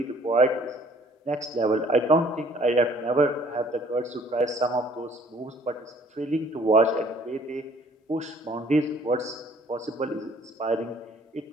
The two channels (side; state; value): both; normal; correlation 0.57